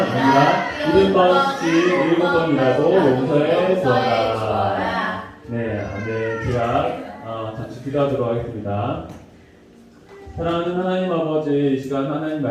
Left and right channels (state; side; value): identical; both; correlation 1.00